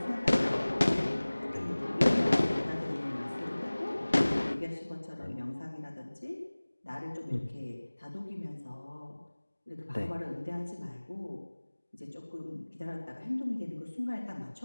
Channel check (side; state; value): both; inverted; correlation -1.00